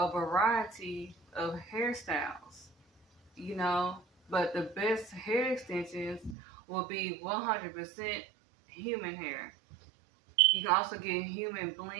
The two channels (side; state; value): left; drops out; at 6.4 s